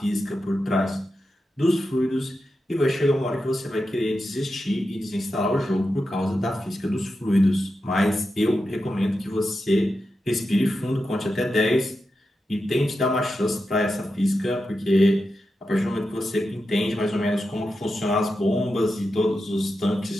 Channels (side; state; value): both; normal; correlation 0.89